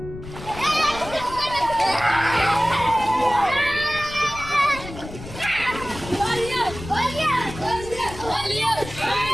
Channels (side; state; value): left; noise; rumble, 13 dB below the sound